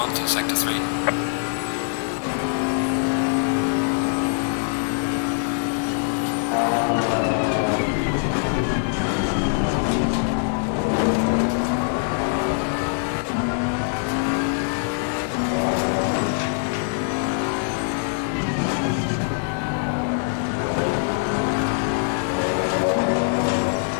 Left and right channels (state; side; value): silent; right; 63 dB below the other